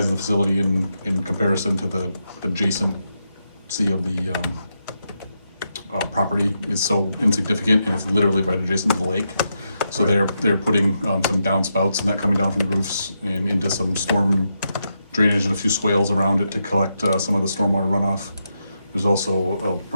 of the facility in comparison to the adjacency of the property is so insignificant, and it's literally right adjacent to the lake. So they're putting some downspouts and that coming down from the roofs and into some storm drainage and a few swales around it to collect some of the stormwater runoff. There's also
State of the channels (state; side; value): inverted; both; correlation -0.84